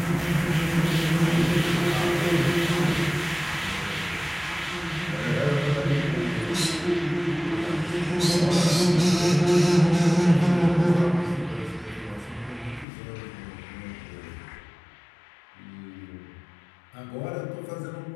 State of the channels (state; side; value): drops out; right; at 12.9 s